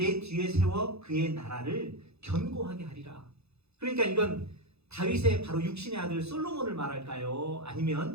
뒤에 세워 그의 나라를 견고하게 하리라. 그러니까 이건 다윗의 바로 육신의 아들 솔로몬을 말할까요?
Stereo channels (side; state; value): left; late; 0.79 ms